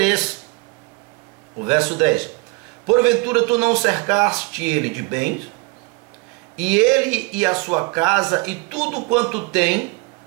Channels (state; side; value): quieter; left; 26.9 dB